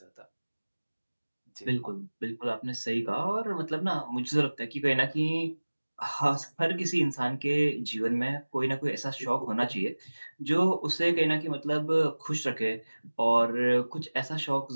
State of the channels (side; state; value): both; inverted; correlation -1.00